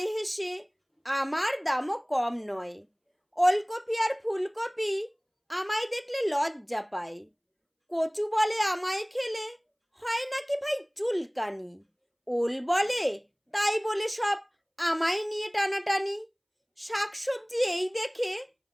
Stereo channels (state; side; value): identical; both; correlation 1.00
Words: হেসে, আমার দামও কম নয়। ওলকপি আর ফুলকপি আমায় দেখলে লজ্জা পায়। কচু বলে, আমায় খেলে হয় নাকি ভাই চুলকানি। ওল বলে, তাই বলে সব আমায় নিয়ে টানাটানি। শাকসবজি এই দেখে